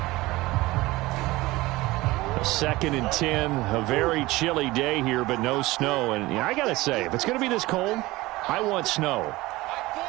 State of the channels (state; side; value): quieter; left; 19.8 dB